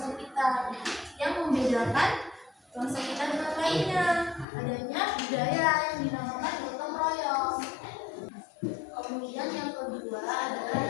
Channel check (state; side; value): drops out; right; at 4.5 s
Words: kita yang membedakan bangsa kita dengan lainnya, adanya budaya yang dinamakan gotong royong. Kemudian yang kedua adalah